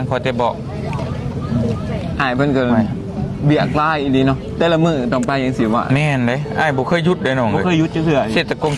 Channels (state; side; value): identical; both; correlation 1.00